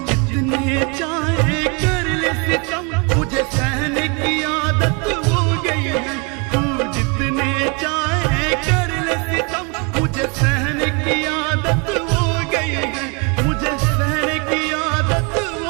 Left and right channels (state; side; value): quieter; left; 31.4 dB